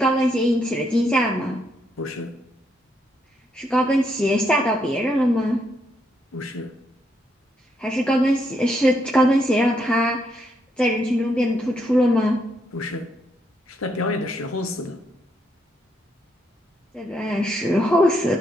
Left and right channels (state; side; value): normal; both; correlation 0.77